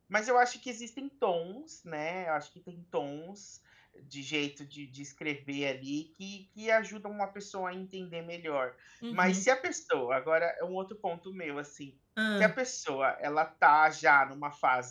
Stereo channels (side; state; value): both; identical; correlation 1.00